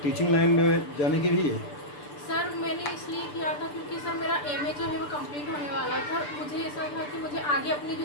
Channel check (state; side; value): late; right; 6.8 ms